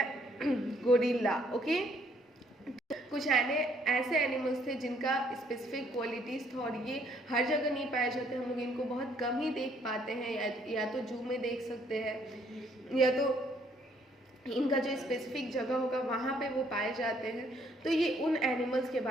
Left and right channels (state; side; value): normal; both; correlation 0.66